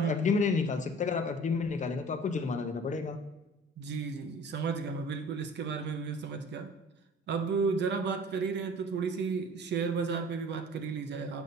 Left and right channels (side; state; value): both; normal; correlation 0.46